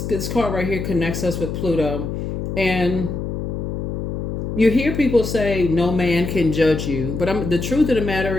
card right here connects us with Pluto. And you hear people say, no man can judge you. But the truth of the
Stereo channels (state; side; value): noise; left; hum, 4 dB below the sound